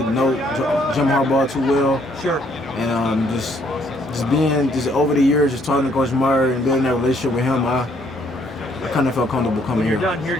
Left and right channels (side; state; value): both; normal; correlation 0.67